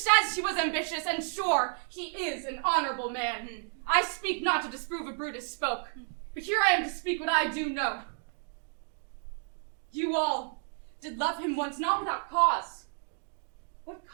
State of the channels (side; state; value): left; silent; 57 dB below the other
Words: he was ambitious, and sure, he is an honorable man. I speak not to disprove what Brutus spoke, but here I am to speak what I do know. You all did love him once, not without cause. What